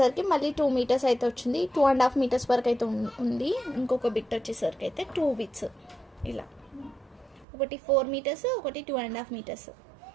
మళ్ళీ 2 మీటర్స్ అయితే వచ్చింది. 2.5 మీటర్స్ వరకు అయితే ఉంది. ఇంకొక బిట్ వచ్చేసరికి అయితే 2 బిట్స్ ఇలా, ఒకటి 4 మీటర్స్, ఒకటి 2.5 మీటర్స్.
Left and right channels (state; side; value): drops out; left; at 7.5 s